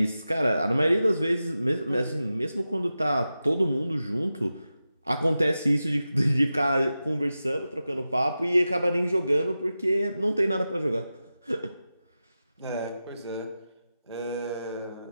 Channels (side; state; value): both; inverted; correlation -0.92